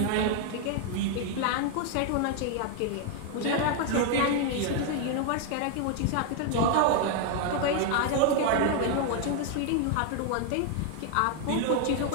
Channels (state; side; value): different; both; correlation 0.00